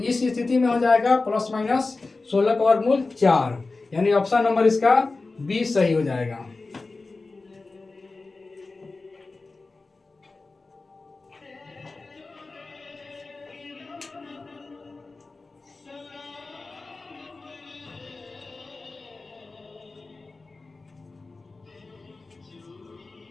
इस स्थिति में हो जाएगा प्लस माइनस 16 का वर्गमूल 4, यानी ऑप्शन नंबर इसका 20 सही हो जाएगा।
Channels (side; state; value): right; quieter; 3.6 dB